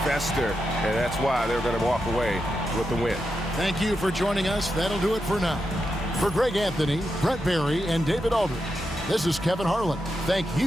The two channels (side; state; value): both; normal; correlation 0.87